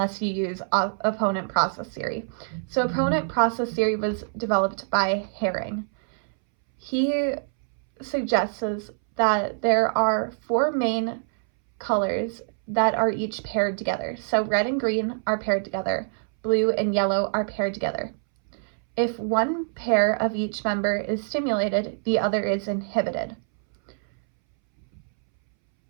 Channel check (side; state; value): left; silent; 62 dB below the other